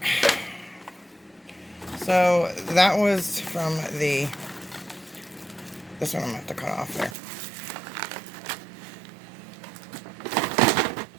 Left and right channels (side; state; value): left; drops out; at 7.2 s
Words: So, that was from the... This one I'm going to have to cut off there.